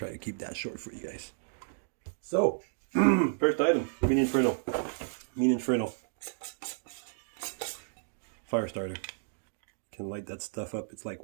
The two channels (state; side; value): silent; left; digital silence